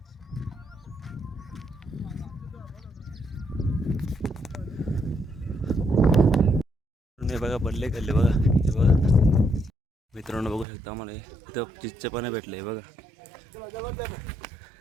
बघा बल्ले खाल्ले बघा. हे बघा मित्रांनो बघू शकता आम्हाला इथं चिच्चे पण भेटले बघा.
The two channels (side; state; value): left; drops out; at 10.7 s